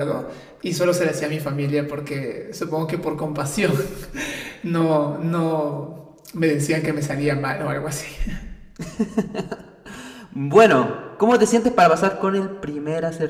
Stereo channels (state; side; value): identical; both; correlation 1.00